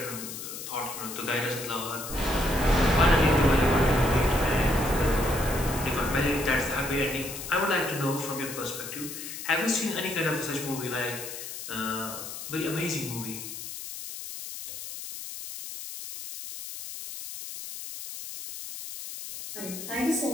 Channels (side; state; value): left; noise; hiss, 9 dB below the sound